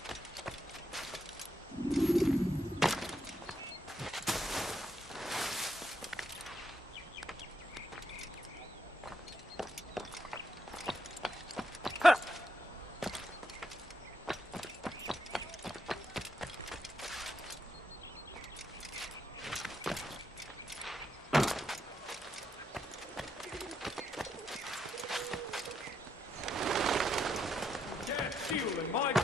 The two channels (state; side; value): normal; both; correlation 0.79